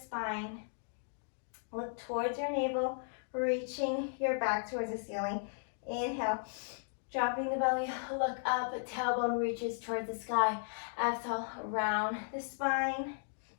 Look towards your navel, reaching your back towards the ceiling. Inhale, dropping the belly, look up, tailbone reaches towards the sky. Exhale, round the spine,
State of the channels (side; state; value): right; silent; digital silence